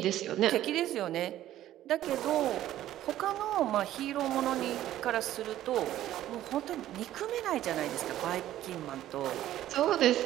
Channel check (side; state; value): left; quieter; 13.2 dB